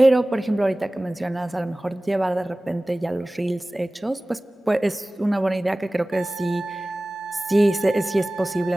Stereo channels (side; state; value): both; normal; correlation 0.98